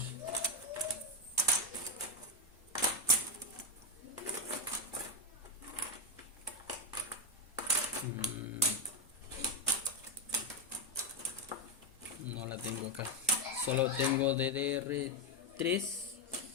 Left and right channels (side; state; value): both; normal; correlation 0.06